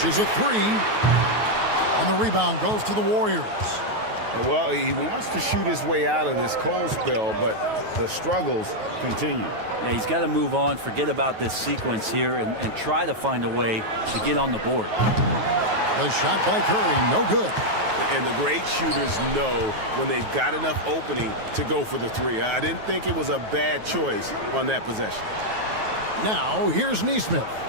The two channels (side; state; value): left; late; 9.3 ms